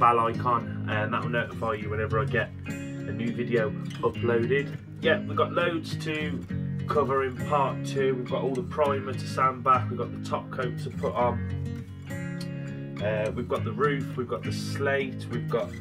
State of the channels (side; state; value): both; identical; correlation 1.00